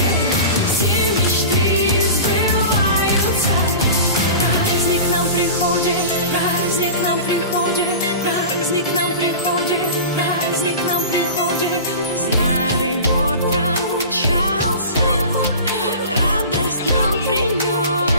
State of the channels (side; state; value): both; inverted; correlation -0.34